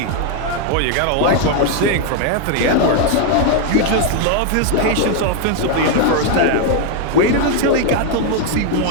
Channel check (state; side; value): different; both; correlation 0.00